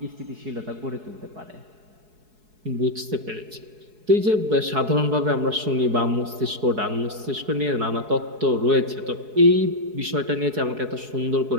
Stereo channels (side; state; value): left; late; 4.7 ms